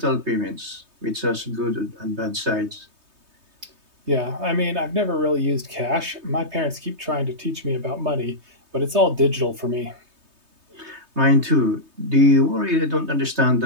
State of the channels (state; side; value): late; left; 3.2 ms